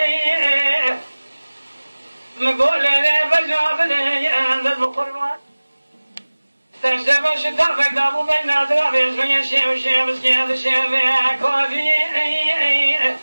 مقول لي بجاب لي عند القربان تشتبه شتر فقدابو بين نادرا بيزمي شيء وشيء مسكين شيء كوفي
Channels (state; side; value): inverted; both; correlation -1.00